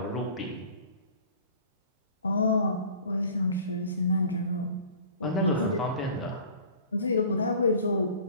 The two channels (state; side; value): inverted; both; correlation -0.46